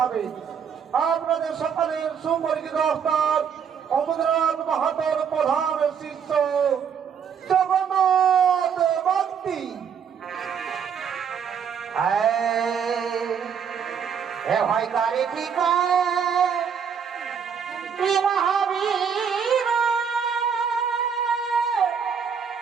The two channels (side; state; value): left; quieter; 7.2 dB